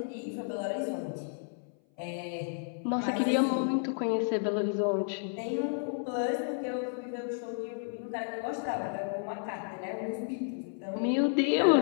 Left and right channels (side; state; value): right; silent; 56 dB below the other